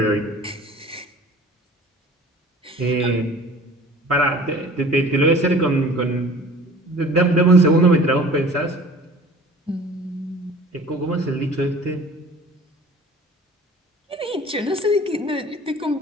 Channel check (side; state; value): both; normal; correlation 0.45